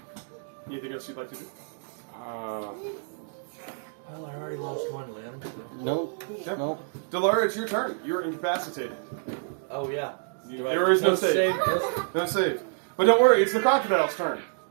Anything else you'd like to do? Well, I already lost one limb. Nope. Yeah. Nope. Delara, it's your turn. You're incapacitated. Oh yeah. There is no save. No save. But don't worry, it's the crocodile's turn.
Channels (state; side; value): silent; left; digital silence